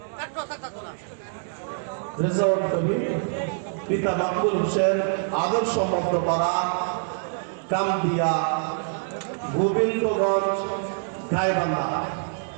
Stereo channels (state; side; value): silent; left; digital silence